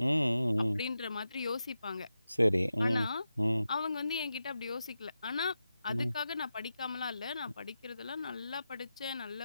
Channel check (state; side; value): inverted; both; correlation -0.90